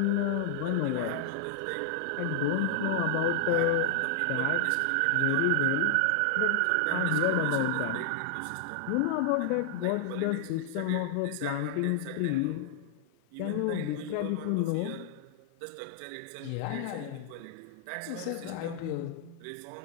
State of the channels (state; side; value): different; both; correlation -0.01